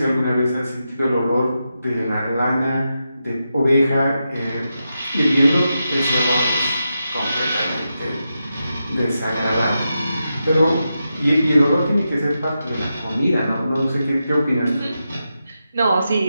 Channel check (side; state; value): both; inverted; correlation -0.88